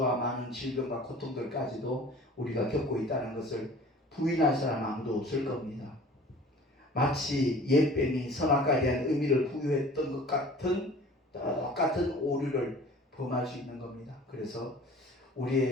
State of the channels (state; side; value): normal; both; correlation 0.45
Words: 많은 질병과 고통들까지도 우리가 겪고 있다는 것을 부인할 사람 아무도 없을 겁니다. 마치 옛뱀이 선악과에 대한 의미를 부여했던 것 같은 똑같은 오류를 범할 수 있는 겁니다. 그래서